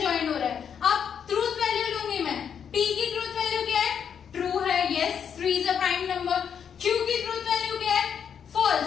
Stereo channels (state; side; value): quieter; right; 7.8 dB